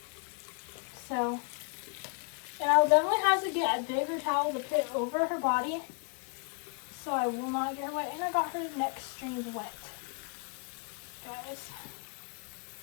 So. And I'll definitely have to get a bigger towel to put over her body. So I will not get her wet. And I got her neck strings wet. Guys.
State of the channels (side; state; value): right; quieter; 39.3 dB